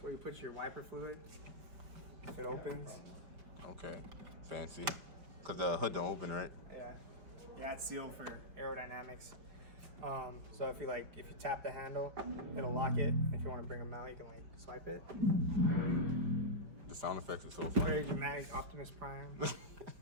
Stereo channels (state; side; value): late; left; 4.9 ms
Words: where you put your wiper fluid. It opens. Okay, fancy. Cause the hood don't open, right? Yeah, it's sealed for aerodynamics. So if you tap the handle, it'll lock it. If you want to bring them out, you can like swipe it. The sound effects are so Very funny. dramatic, Optimus Prime.